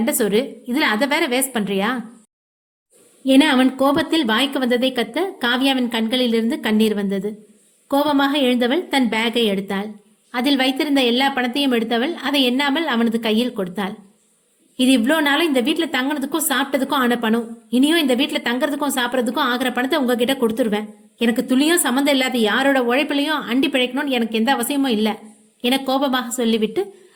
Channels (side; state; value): both; identical; correlation 1.00